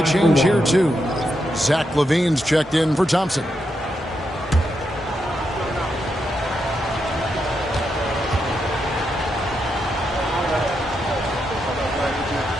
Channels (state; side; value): normal; both; correlation 0.83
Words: change here, too. Zach LaVine's checked in for Thompson.